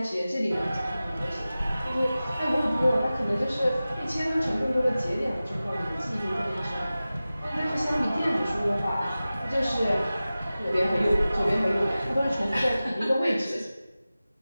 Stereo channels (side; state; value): both; inverted; correlation -0.96